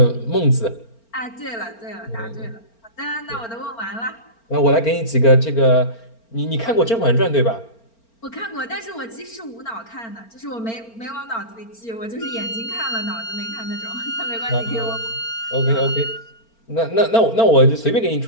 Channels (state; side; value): late; right; 4.4 ms